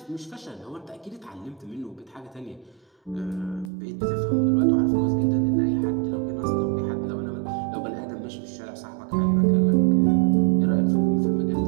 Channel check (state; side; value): drops out; left; at 3.7 s